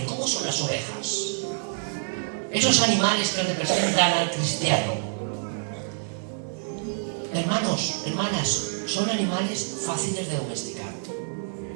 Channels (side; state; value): left; silent; digital silence